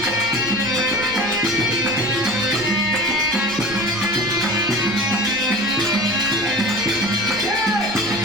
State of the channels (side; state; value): right; noise; rumble, 19 dB below the sound